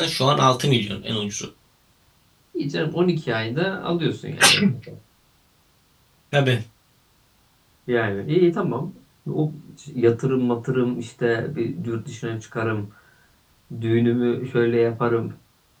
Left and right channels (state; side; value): identical; both; correlation 1.00